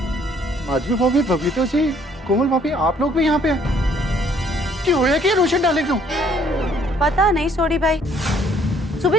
माधवी भाभी, बबीता जी, कोमल भाभी, आप लोग भी यहाँ पे हैं? क्यों होया कि रोशन डाले क्यों? पता नहीं सोडी भाई, सुबह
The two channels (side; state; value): both; normal; correlation 0.62